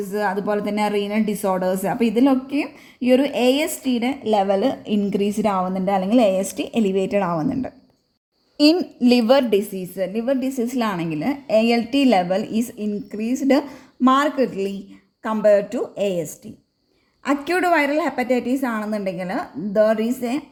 അതുപോലെ തന്നെ റീനൽ ഡിസോർഡേഴ്സ്. അപ്പോൾ ഇതിലൊക്കെയും ഈ ഒരു ASTയുടെ ലെവൽ ഇൻക്രീസ്ഡ് ആവുന്നുണ്ട് അല്ലെങ്കിൽ AST എലിവേറ്റഡ് ആവുന്നുണ്ട്. ഇൻ ലിവർ ഡിസീസിലാണെങ്കിൽ ALT level is increased markedly compared to AST. Acute viral hepatitis ആണെന്നുണ്ടെങ്കിൽ there is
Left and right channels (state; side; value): identical; both; correlation 1.00